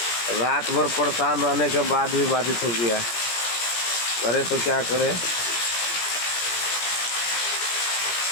रात भर परेशान रहने के बाद भी बाधित हो गया। करे तो क्या करे।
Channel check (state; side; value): late; right; 17 ms